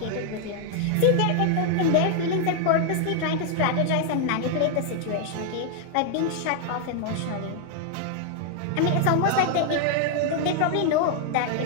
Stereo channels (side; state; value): both; different; correlation 0.00